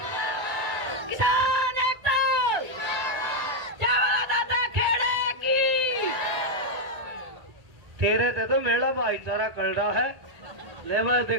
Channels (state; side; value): late; left; 1.9 ms